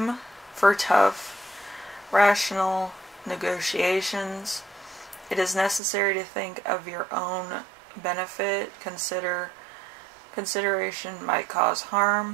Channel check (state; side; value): drops out; left; at 5.8 s